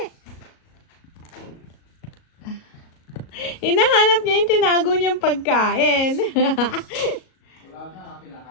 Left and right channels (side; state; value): right; late; 37 ms